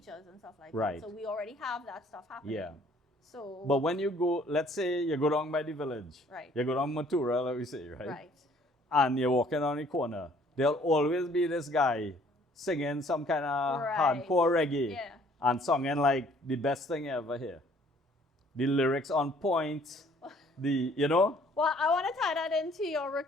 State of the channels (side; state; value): both; normal; correlation 0.59